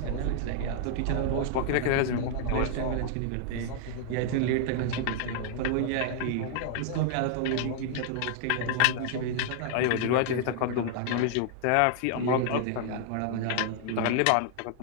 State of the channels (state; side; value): different; both; correlation -0.01